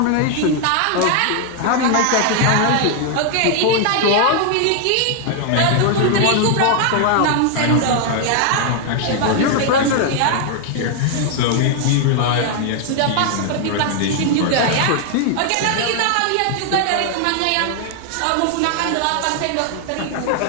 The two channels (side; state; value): both; different; correlation 0.00